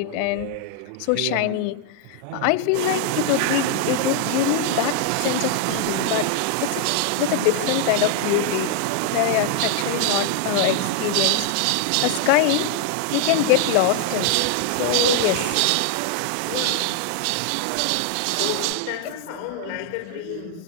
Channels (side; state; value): both; different; correlation 0.00